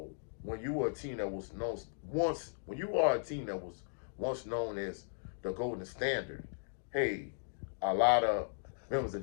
when you were a team that was known when you are a team that was once known as the Golden Standard, hey, a lot of members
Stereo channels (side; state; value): right; silent; digital silence